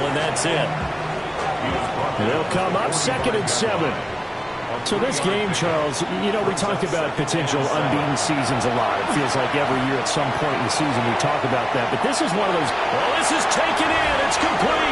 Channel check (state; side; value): identical; both; correlation 1.00